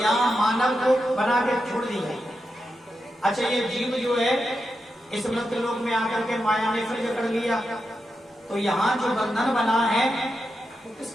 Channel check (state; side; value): normal; both; correlation 0.87